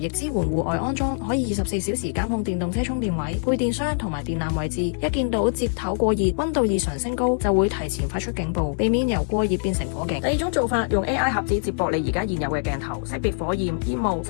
支援戶外安裝，可以24小時監控電動車充電位、配電箱同埋電纜位置。一見到接頭過熱、溫度異常升高，就會提前發出警報，避免由過熱變成火警。第二種做法，用 AI 盒子接駁你而家現有嘅鏡頭，識別火焰、煙霧，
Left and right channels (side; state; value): right; silent; 63 dB below the other